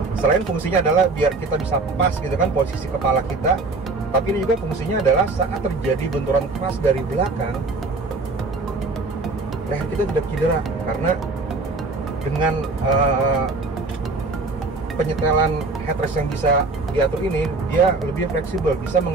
selain fungsinya adalah biar kita bisa pas gitu kan posisi kepala kita, tapi ini juga fungsinya adalah saat terjadi benturan pas dari belakang, leher kita tidak cedera karena dengan penyetelan headrest yang bisa diatur ini, dia lebih fleksibel, bisa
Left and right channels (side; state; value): left; quieter; 3.5 dB